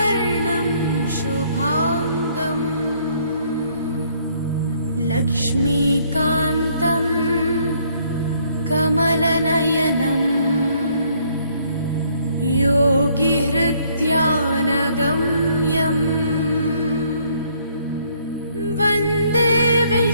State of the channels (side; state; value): both; inverted; correlation -0.66